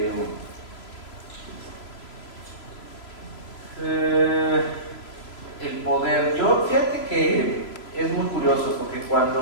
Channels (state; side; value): late; right; 3.0 ms